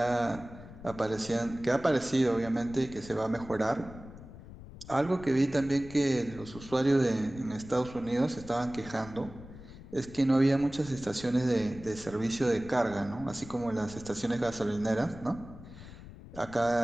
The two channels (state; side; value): noise; left; rumble, 16 dB below the sound